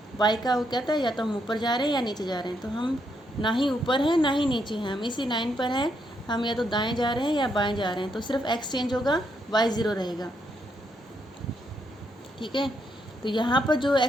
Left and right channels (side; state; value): both; normal; correlation 0.77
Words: वाई का वो कहता है या तो हम ऊपर जा रहे हैं या नीचे जा रहे हैं, तो हम ना ही ऊपर हैं ना ही नीचे हैं, हम इसी लाइन पर हैं, हम या तो दाएं जा रहे हैं या बाएं जा रहे हैं, तो सिर्फ एक्स चेंज होगा, वाई 0 रहेगा। ठीक है, तो यहाँ पर जो